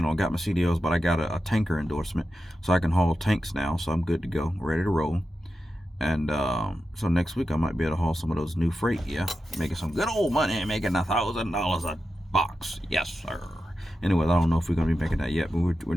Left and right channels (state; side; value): normal; both; correlation 0.91